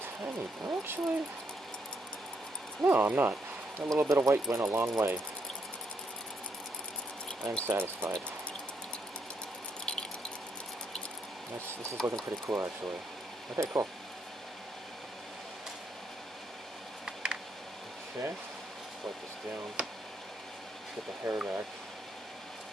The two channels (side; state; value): both; normal; correlation 0.75